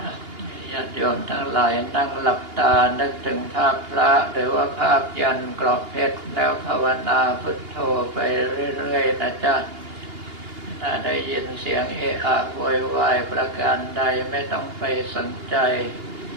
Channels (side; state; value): left; late; 2.8 ms